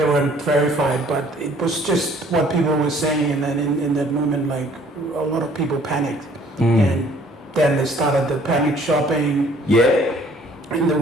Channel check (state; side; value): normal; both; correlation 0.58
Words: weren't verified, but it was just what people were saying, and then in that moment, like a lot of people panicked, and then they started the panic shopping, Yeah.